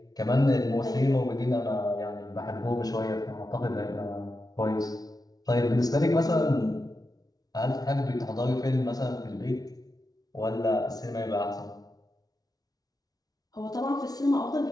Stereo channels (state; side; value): late; right; 0.18 ms